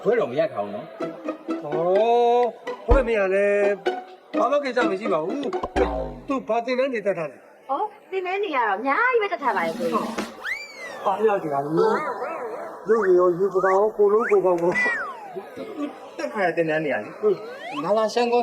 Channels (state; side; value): identical; both; correlation 1.00